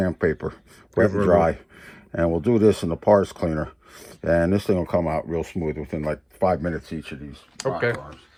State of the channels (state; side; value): identical; both; correlation 1.00